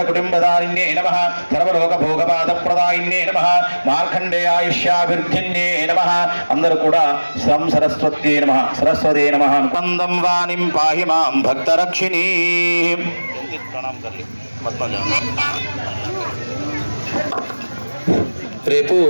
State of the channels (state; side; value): inverted; both; correlation -1.00